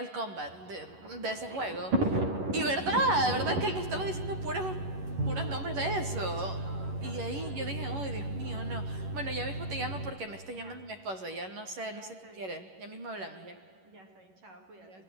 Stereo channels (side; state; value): left; late; 11 ms